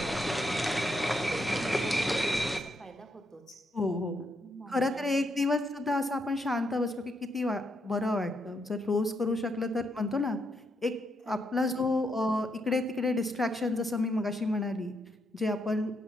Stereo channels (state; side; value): normal; both; correlation 0.78